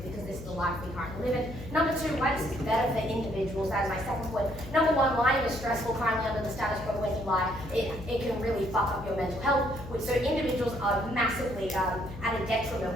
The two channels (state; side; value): noise; left; hum, 13 dB below the sound